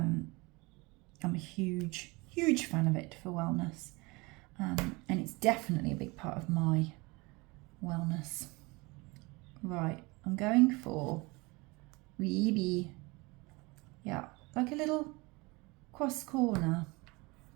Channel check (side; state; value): left; quieter; 25.0 dB